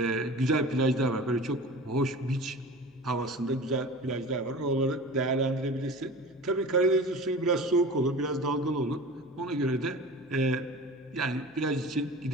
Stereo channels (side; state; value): left; noise; hum, 30 dB below the sound